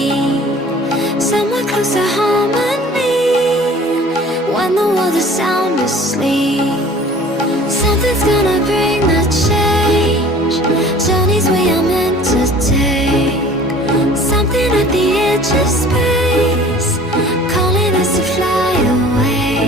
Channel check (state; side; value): normal; both; correlation 0.48